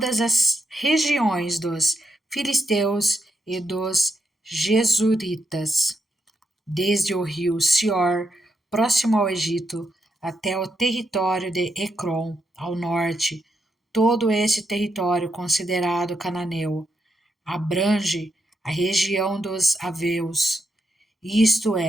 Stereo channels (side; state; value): both; normal; correlation 0.81